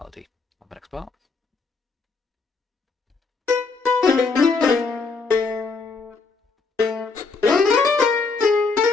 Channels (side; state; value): right; quieter; 4.4 dB